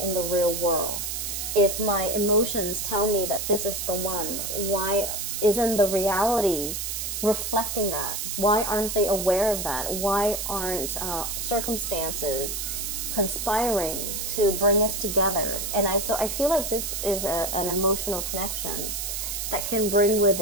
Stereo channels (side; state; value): right; noise; hiss, 3 dB below the sound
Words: in the real world? If my emotions tell me that this is the one, why isn't the reality reflecting that? Why aren't they aware of that? Why aren't circumstances conspiring to bring us together? And so I feel like this is an emotional connection that can bring with